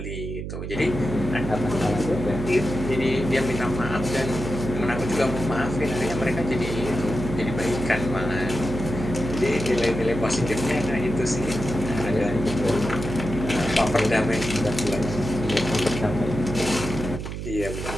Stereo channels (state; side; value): noise; right; hum, 6 dB below the sound